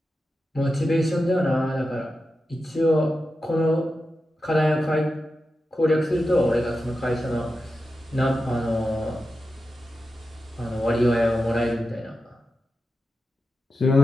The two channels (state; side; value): normal; both; correlation 0.91